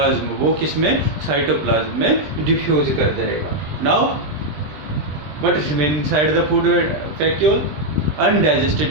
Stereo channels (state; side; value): late; left; 20 ms